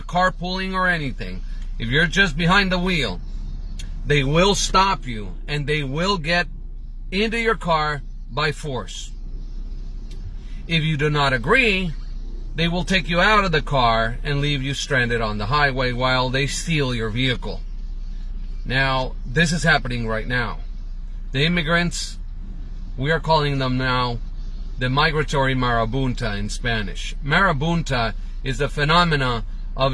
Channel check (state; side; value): identical; both; correlation 1.00